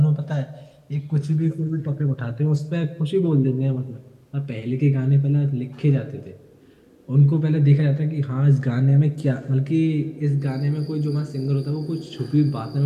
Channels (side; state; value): both; identical; correlation 1.00